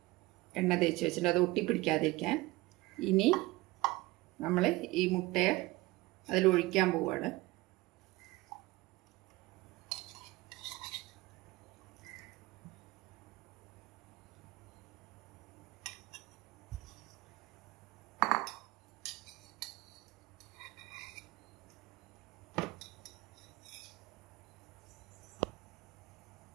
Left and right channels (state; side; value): quieter; left; 20.3 dB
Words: അത് ഒട്ടിപ്പിടിക്കാതിരിക്കാൻ. ഇനി നമ്മൾ ഈ മുട്ടയെ അതിലൊഴിക്കാൻ പോവുകയാണ്.